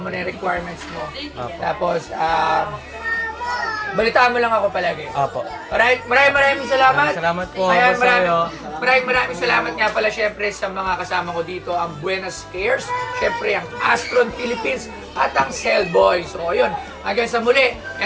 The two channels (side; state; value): both; identical; correlation 1.00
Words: na yung requirements mo. Tapos, balitaan mo lang ako palagi. Apo. Alright, maraming salamat. Salamat po. Ayan, Boss Ayo. maraming salamat nga pala syempre sa mga kasama ko dito, ang Buenos Cares, syempre ang Astron Philippines at ang Cellboy. So, ayun, hanggang sa muli,